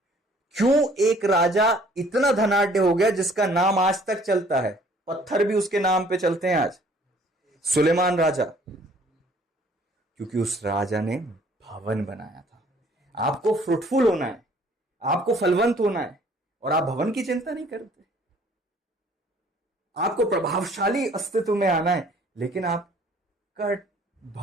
क्यों एक राजा इतना धनाढ्य हो गया जिसका नाम आज तक चलता है, पत्थर भी उसके नाम पे चलते हैं आज, सुलेमान राजा। क्योंकि उस राजा ने भवन बनाया था। आपको फ्रूटफुल होना है, आपको फलवंत होना है, और आप भवन की चिंता नहीं करते। आपको प्रभावशाली अस्तित्व में आना है, लेकिन आपका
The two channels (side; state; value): both; normal; correlation 0.57